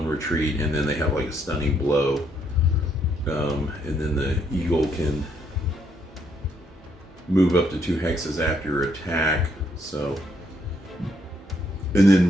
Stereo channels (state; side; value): normal; both; correlation 0.73